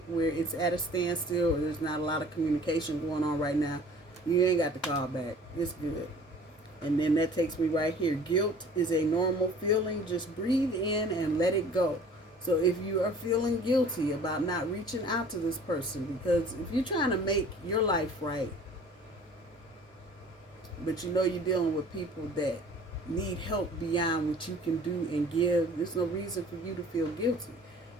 where it's at a standstill or there's not a lot of communication going on right now, you ain't got to call back. It's good. And then that takes me right here. Guilt is a normal feeling. Just breathe in and let it go. So if you are feeling guilty about not reaching out to this person, because if you're trying to make your life right, but you're dealing with people that need help beyond what you can do and give, there's no reason for you to feel guilty.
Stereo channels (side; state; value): both; normal; correlation 0.49